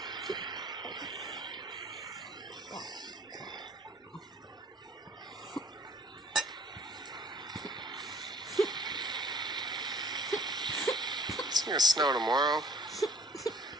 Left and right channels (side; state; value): both; normal; correlation 0.53